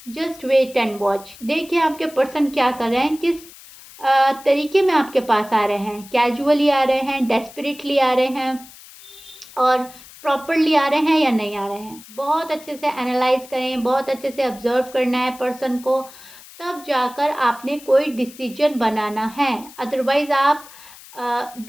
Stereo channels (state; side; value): noise; left; hiss, 20 dB below the sound